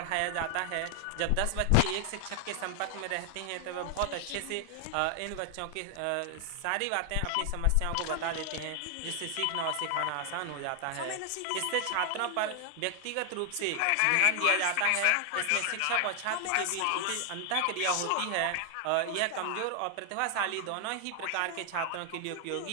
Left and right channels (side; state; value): both; different; correlation 0.00